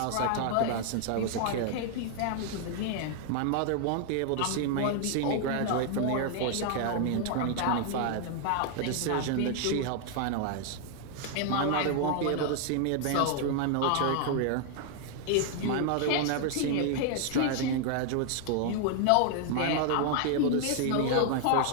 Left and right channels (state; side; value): different; both; correlation 0.00